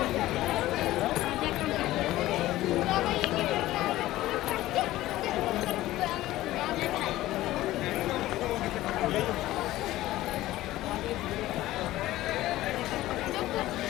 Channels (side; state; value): right; quieter; 16.0 dB